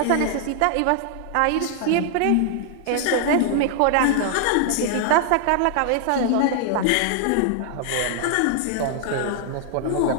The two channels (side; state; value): both; different; correlation 0.00